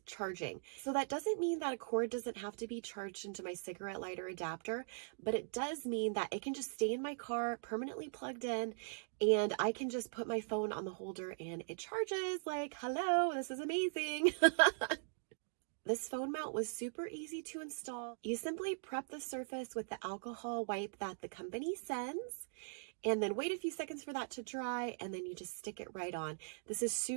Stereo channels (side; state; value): left; silent; digital silence